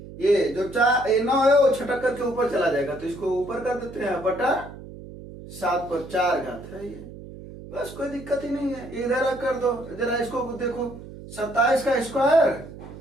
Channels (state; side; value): noise; right; hum, 15 dB below the sound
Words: ये जो 9 है वो छटक करके ऊपर चला जाएगा, तो इसको ऊपर कर देते हैं, बटा 7 पर 4 घात है ये, बस कोई दिक्कत ही नहीं है। इधर कर दो, जरा इसको देखो, 27 का स्क्वायर